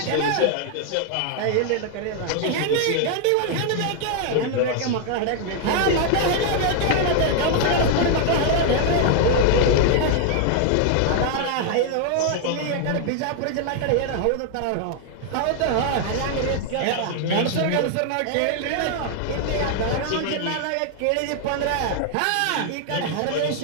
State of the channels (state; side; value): different; both; correlation 0.00